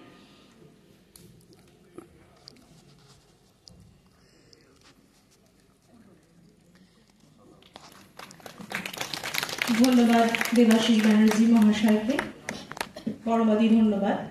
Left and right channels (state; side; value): identical; both; correlation 1.00